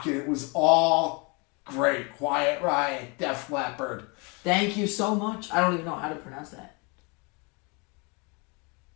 And it was all great. Quiet Riot, Def Leppard. Thank you so much. I don't even know how to pronounce that.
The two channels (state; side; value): quieter; right; 30.7 dB